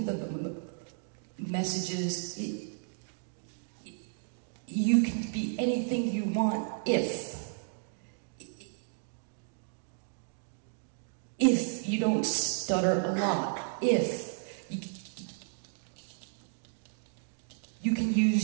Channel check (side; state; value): left; silent; digital silence